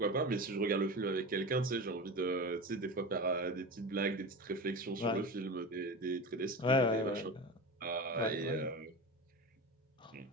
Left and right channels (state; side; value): normal; both; correlation 0.27